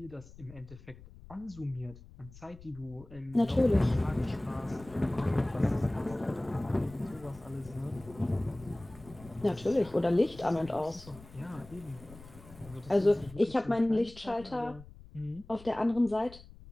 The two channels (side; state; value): left; noise; rumble, 19 dB below the sound